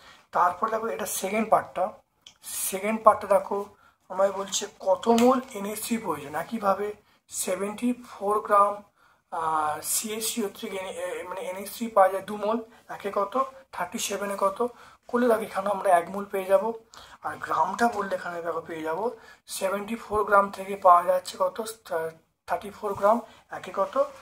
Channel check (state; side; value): identical; both; correlation 1.00